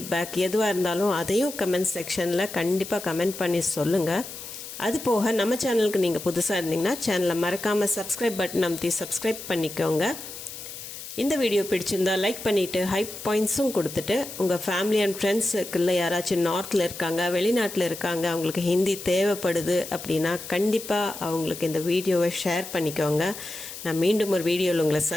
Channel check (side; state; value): left; noise; hiss, 11 dB below the sound